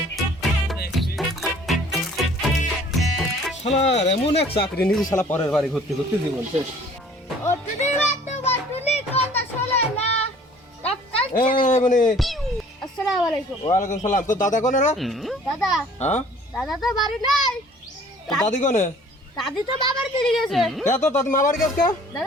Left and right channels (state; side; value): normal; both; correlation 0.53